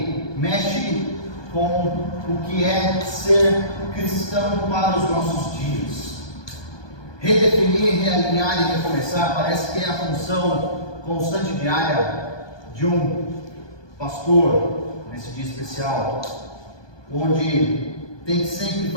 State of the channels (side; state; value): right; late; 1.2 ms